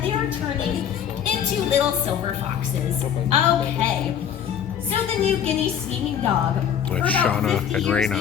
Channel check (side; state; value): right; quieter; 8.8 dB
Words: they are turning into little silver foxes. Okay. So the New Guinea singing dog. Like For about Shauna 50 and years,